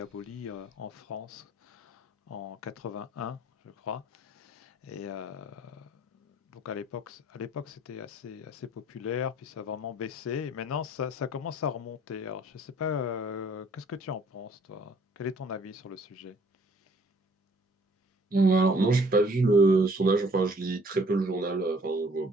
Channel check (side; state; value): both; normal; correlation 0.58